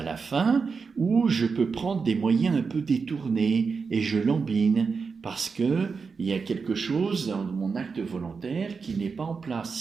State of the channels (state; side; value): quieter; left; 5.1 dB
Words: la fin, ou je peux prendre des moyens un peu détournés et je lambine parce qu'il y a quelque chose dans mon acte volontaire qui n'est pas en